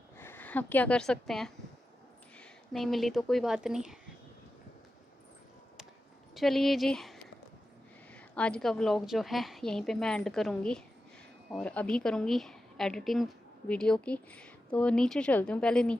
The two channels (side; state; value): both; normal; correlation 0.91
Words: अब क्या कर सकते हैं, नहीं मिली तो कोई बात नहीं। चलिए जी, आज का व्लॉग जो है यहीं पे मैं एंड करूँगी और अभी करूँगी एडिटिंग वीडियो की। तो नीचे चलती हूँ, पहले